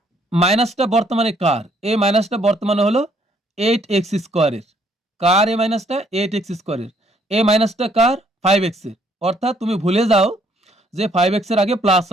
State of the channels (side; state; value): both; normal; correlation 0.66